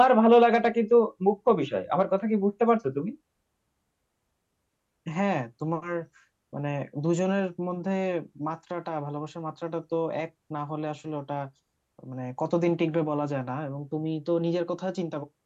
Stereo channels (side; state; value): both; identical; correlation 1.00